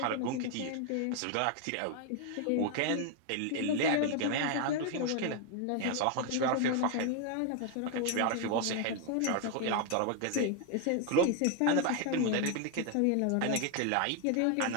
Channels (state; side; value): different; both; correlation 0.01